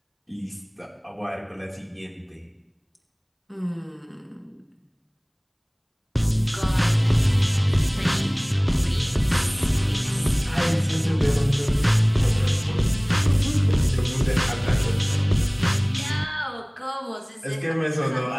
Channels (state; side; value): identical; both; correlation 1.00